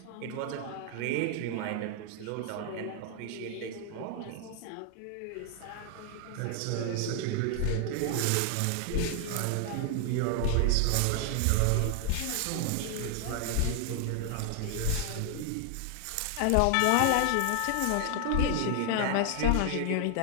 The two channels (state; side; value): different; both; correlation 0.00